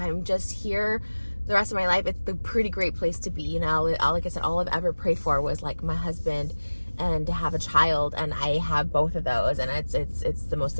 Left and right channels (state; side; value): inverted; both; correlation -1.00